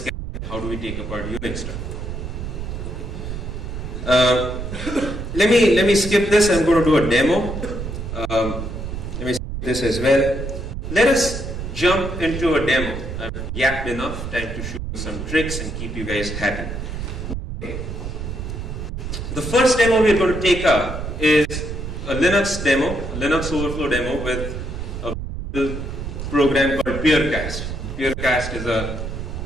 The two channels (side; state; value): right; noise; rumble, 6 dB below the sound